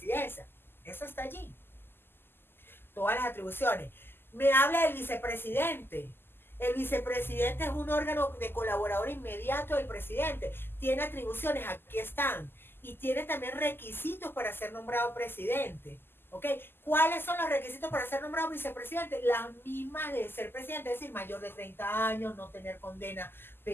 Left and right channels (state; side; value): late; right; 0.10 ms